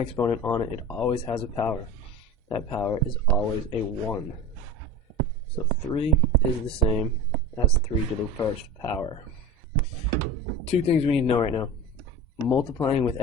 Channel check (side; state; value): both; normal; correlation 0.31